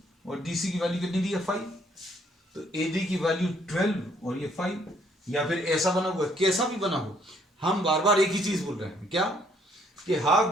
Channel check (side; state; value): both; normal; correlation 0.66